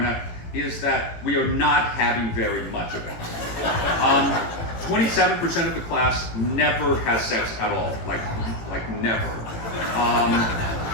out is that we are not having very much of it. 27% of the class never has sex at all, like never.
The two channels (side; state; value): right; late; 18 ms